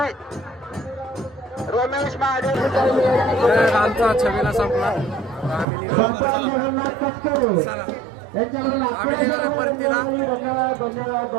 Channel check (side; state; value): left; drops out; at 5.7 s